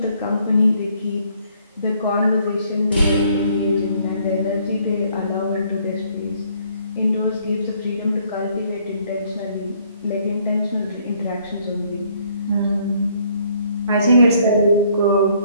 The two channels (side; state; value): both; inverted; correlation -0.65